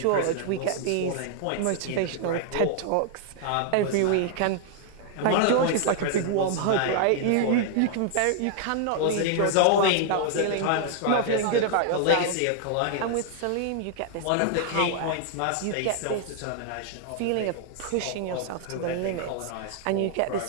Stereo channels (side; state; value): both; different; correlation -0.01